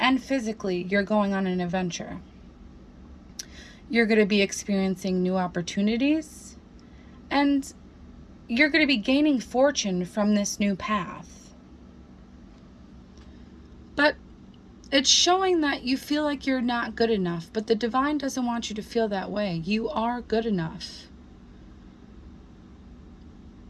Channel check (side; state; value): both; identical; correlation 1.00